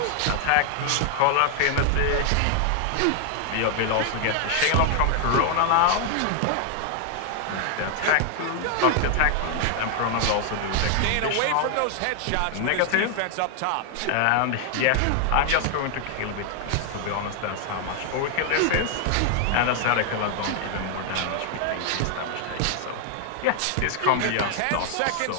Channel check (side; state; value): both; different; correlation 0.00